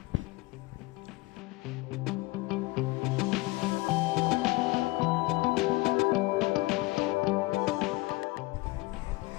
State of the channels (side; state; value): right; quieter; 22.2 dB